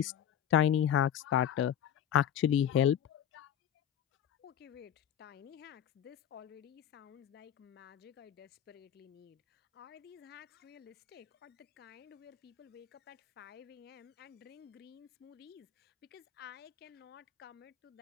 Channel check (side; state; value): right; quieter; 9.7 dB